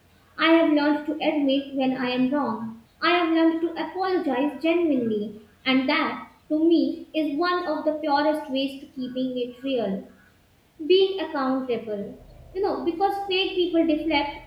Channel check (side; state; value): both; identical; correlation 1.00